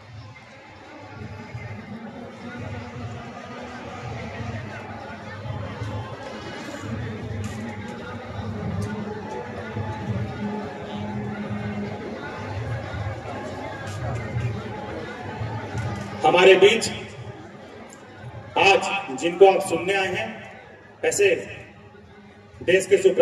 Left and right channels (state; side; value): identical; both; correlation 1.00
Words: हमारे बीच आज जिनको आप सुनने आए हैं, ऐसे देश के